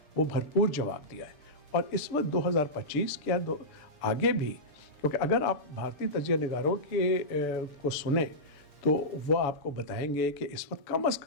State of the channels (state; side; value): late; right; 6.9 ms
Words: وہ بھرپور جواب دیا ہے. اور اس وقت 2025 کیا آگے بھی، کیونکہ اگر آپ بھارتی تجزیہ نگاروں کو سنیں تو وہ آپ کو بتائیں گے کہ اس وقت کم از